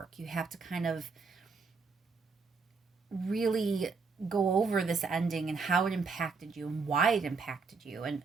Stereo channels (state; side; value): quieter; left; 4.6 dB